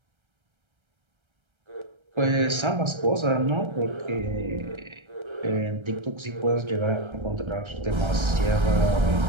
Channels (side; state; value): left; late; 1.3 ms